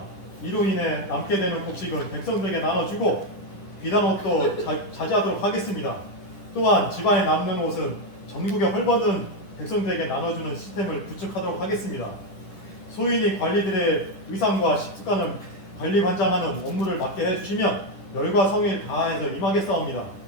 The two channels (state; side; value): late; right; 10 ms